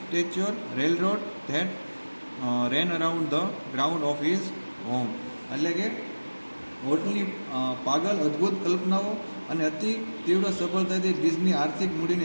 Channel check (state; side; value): inverted; both; correlation -1.00